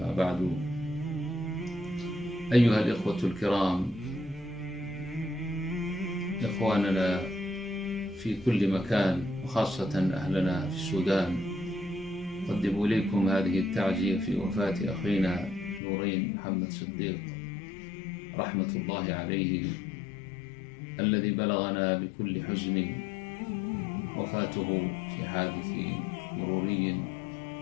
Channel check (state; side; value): drops out; right; at 15.8 s